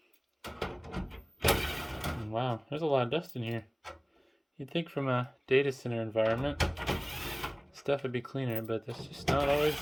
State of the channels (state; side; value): identical; both; correlation 1.00